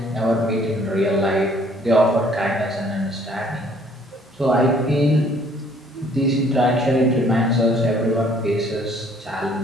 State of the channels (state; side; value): normal; both; correlation 0.60